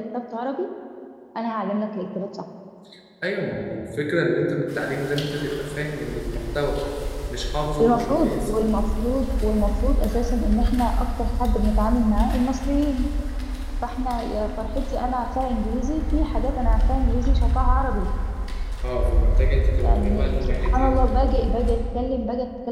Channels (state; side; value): identical; both; correlation 1.00